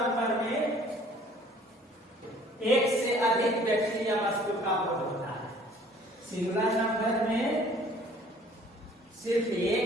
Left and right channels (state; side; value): normal; both; correlation 0.54